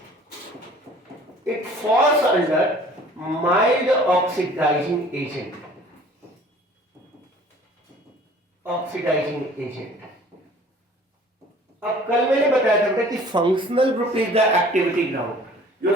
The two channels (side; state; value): both; normal; correlation 0.50